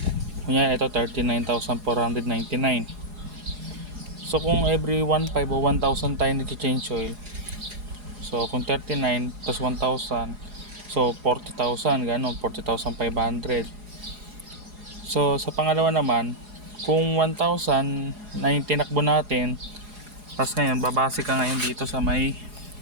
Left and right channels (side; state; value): left; late; 4.8 ms